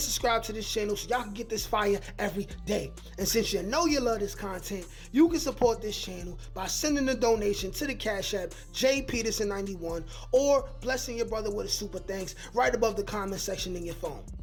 subscribe to this channel so y'all can get this fire every day. And since you know you love this content, you can support this channel by sending a donation to the Cash App JPeterson91 or blessing your brother with a super thanks right above the comment section in your phone.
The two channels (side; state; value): both; identical; correlation 1.00